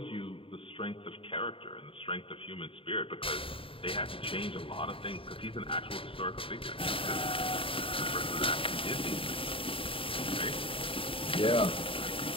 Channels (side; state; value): right; late; 0.26 ms